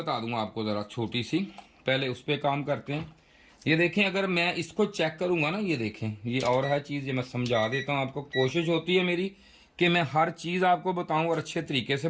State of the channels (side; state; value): both; identical; correlation 1.00